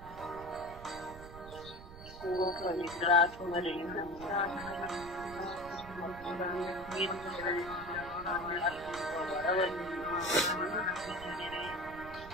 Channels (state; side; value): noise; right; rumble, 15 dB below the sound